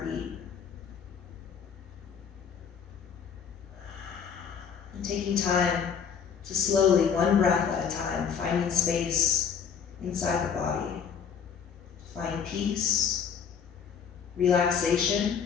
and taking time to slowly, one breath at a time, finding space inside the body, to find peace, relaxation,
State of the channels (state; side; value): quieter; right; 7.1 dB